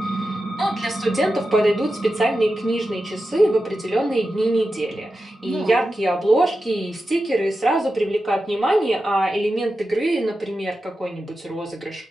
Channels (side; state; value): both; normal; correlation 0.91